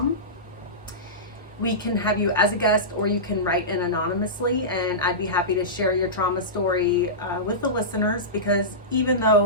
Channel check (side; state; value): both; normal; correlation -0.18